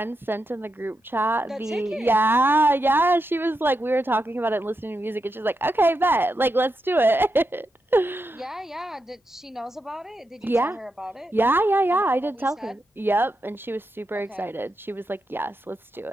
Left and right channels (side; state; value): both; normal; correlation 0.86